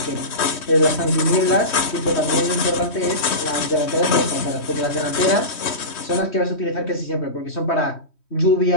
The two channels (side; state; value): right; late; 3.1 ms